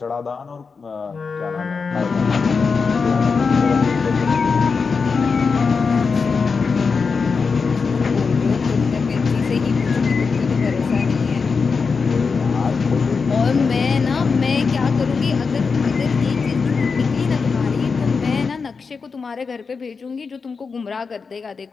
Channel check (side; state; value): right; quieter; 5.0 dB